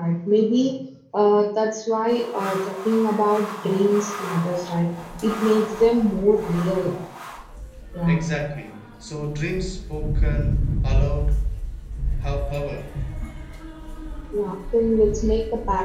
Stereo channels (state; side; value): identical; both; correlation 1.00